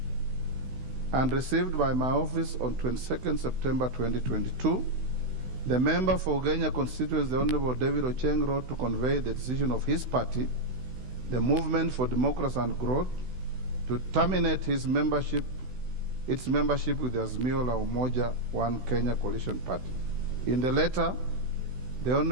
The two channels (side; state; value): left; late; 16 ms